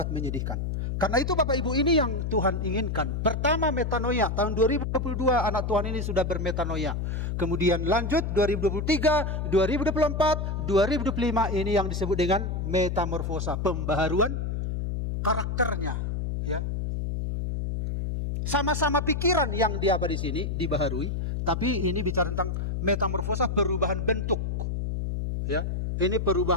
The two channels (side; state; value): left; noise; hum, 2 dB below the sound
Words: menyedihkan. Karena itu Bapak Ibu ini yang Tuhan inginkan. Pertama metanoia. Tahun 2022 anak Tuhan ini sudah bermetanoia. Kemudian lanjut 2023, 2024, 2025 ini yang disebut dengan metamorfosa. Pembaharuan karakternya. Ya. Sama-sama pikiran yang dia apa di sini dibaharui. Tapi ini bicara tentang metamorfosa, perubahan bentuk. Ya. Ini